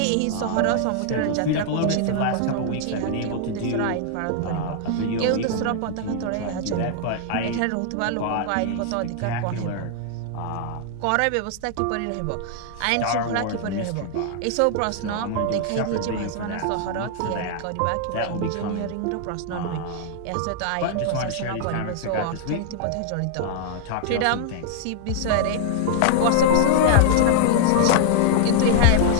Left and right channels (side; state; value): both; different; correlation -0.01